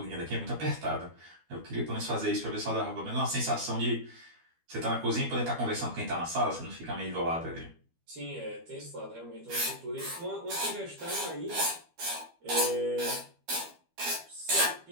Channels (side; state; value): left; late; 12 ms